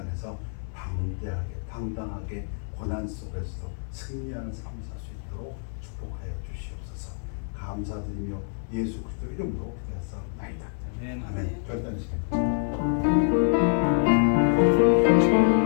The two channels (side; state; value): right; silent; 60 dB below the other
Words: 방대하게 당당하게 고난 속에서도 승리하는 삶을 살 수 있도록 축복하여 주시옵소서. 감사드리며 예수 그리스도 이름으로 기도하옵나이다. 아멘. 아멘. 결단하시겠습니다.